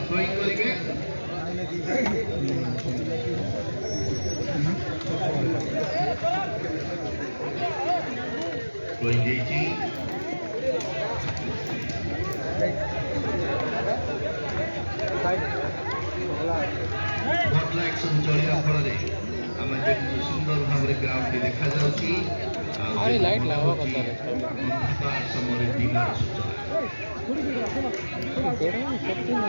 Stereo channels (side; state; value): both; inverted; correlation -1.00